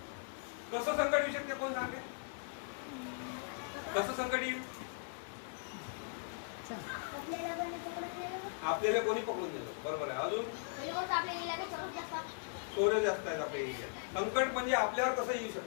कसं संकट येऊ शकते कोण सांगते? कसं संकट येईल? आपल्याला कोणी पकडून गेलं. बरोबर आहे. अजून चोरे जास्त आहेत आपल्या एरियात. संकट म्हणजे आपल्यावर कसं येऊ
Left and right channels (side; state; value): right; silent; digital silence